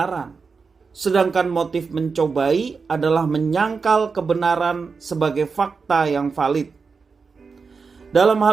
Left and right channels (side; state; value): left; quieter; 5.0 dB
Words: Sedangkan motif mencobai adalah menyangkal kebenaran sebagai fakta yang valid. Dalam